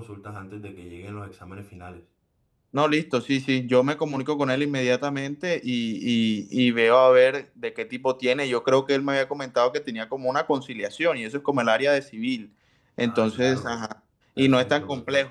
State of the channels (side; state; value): both; identical; correlation 1.00